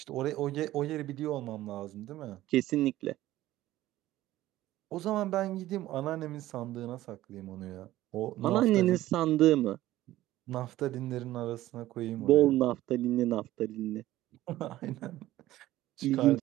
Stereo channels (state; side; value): quieter; left; 15.3 dB